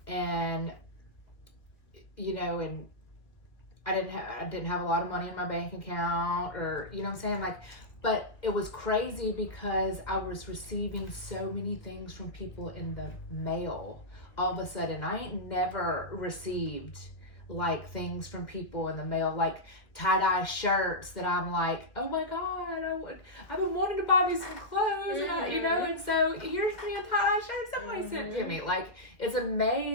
and and I didn't have a lot of money in my bank account, or what I'm saying, like. But it was crazy because I was receiving so many things from people in the mail. All of a sudden, I ain't never received like things from people in the mail, like tie-dye shirts that I'm like, oh my God, I've been wanting to buy me some clothes, and and so here's me a tie-dye shirt somebody sent to me. Like, it's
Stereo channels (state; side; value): late; right; 1.7 ms